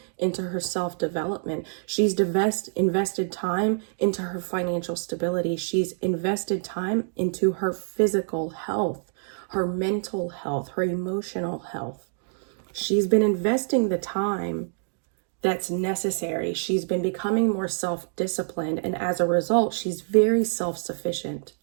into her self-development. She's invested time into her financial stability. She's invested time into her physical health, her mental health, her emotional health. She's been investing the time that's necessary. She's been becoming more self-disciplined, and as a result, she's very self-sufficient.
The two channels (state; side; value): silent; left; 61 dB below the other